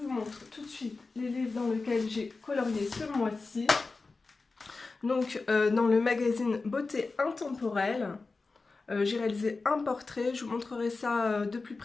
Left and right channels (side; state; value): right; quieter; 3.9 dB